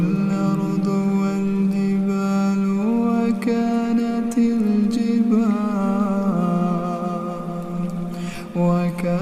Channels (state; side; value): identical; both; correlation 1.00